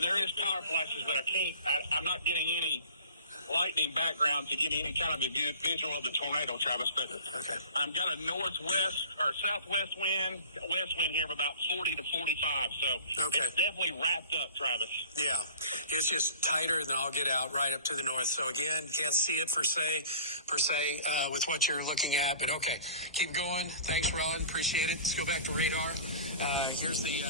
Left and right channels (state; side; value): inverted; both; correlation -0.44